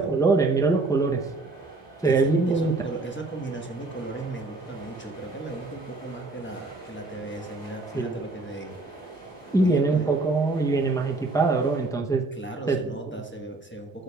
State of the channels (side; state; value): left; quieter; 3.2 dB